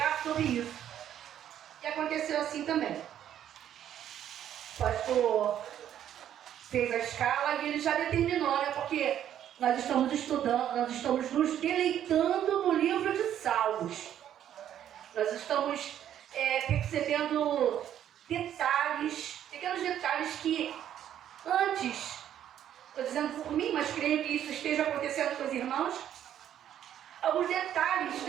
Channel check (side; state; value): left; quieter; 10.5 dB